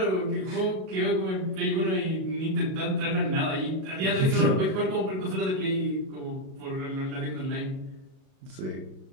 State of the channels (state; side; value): late; left; 37 ms